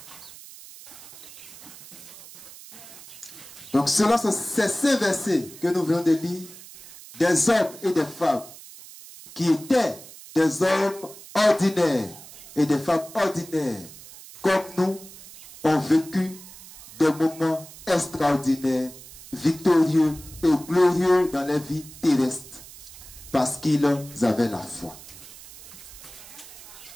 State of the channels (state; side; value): noise; right; hiss, 17 dB below the sound